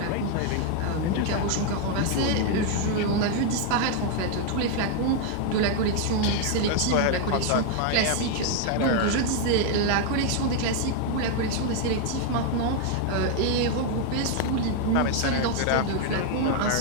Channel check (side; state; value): both; different; correlation 0.00